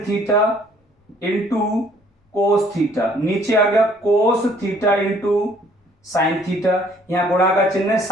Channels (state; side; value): normal; both; correlation 0.60